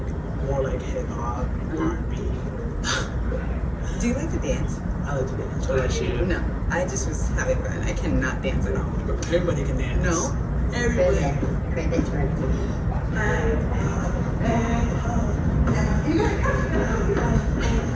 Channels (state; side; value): identical; both; correlation 1.00